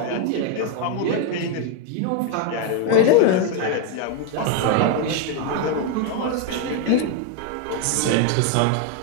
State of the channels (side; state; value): both; different; correlation 0.01